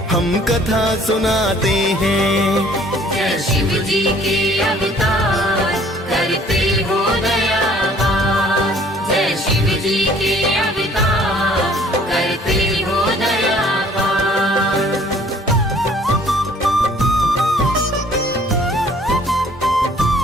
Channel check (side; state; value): both; normal; correlation 0.56